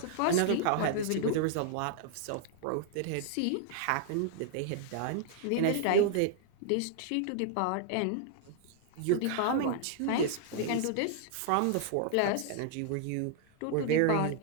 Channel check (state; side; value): different; both; correlation -0.01